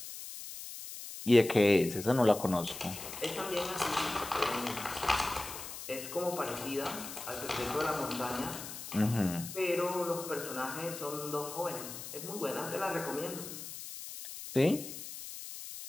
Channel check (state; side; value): noise; left; hiss, 10 dB below the sound